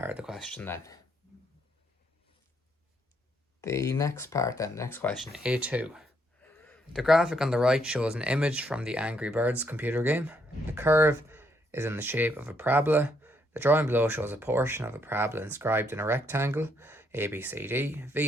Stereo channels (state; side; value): normal; both; correlation 0.73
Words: of the question then. The next part then, next question, A2. The graphic on the right shows an image from the Angry Birds computer game. The curve is in the shape of a parabola. The drawing below shows a portion of a parabola inscribed in a rectangle, ABCD.